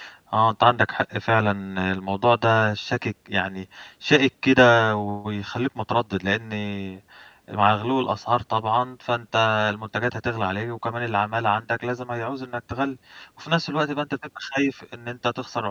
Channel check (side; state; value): both; identical; correlation 1.00